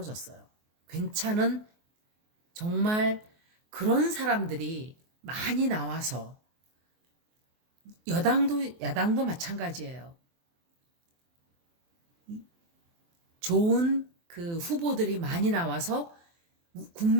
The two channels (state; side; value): late; left; 23 ms